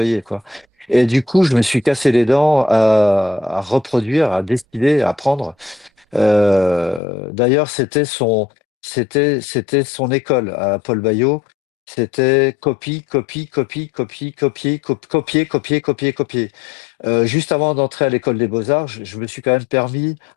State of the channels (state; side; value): drops out; right; at 7.0 s